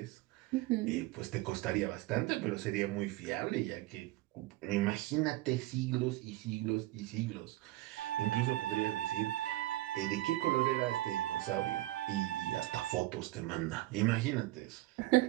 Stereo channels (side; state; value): left; quieter; 17.5 dB